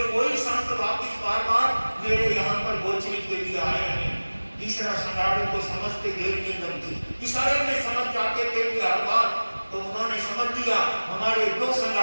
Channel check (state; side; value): inverted; both; correlation -1.00